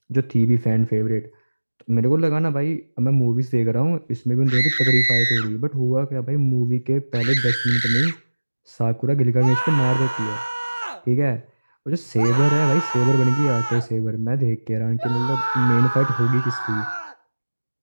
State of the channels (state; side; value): inverted; both; correlation -1.00